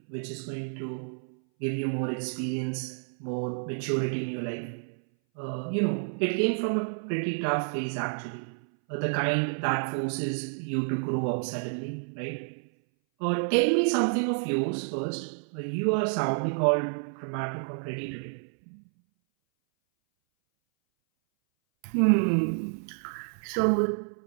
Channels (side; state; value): left; silent; 58 dB below the other